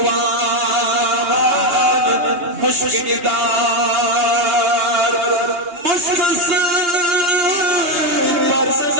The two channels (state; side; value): late; left; 2.8 ms